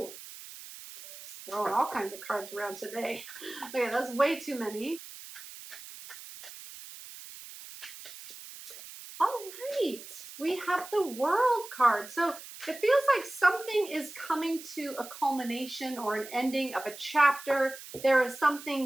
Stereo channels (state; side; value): noise; right; hiss, 14 dB below the sound